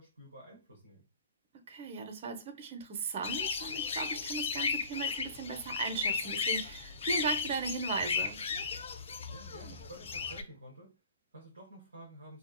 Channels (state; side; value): inverted; both; correlation -0.44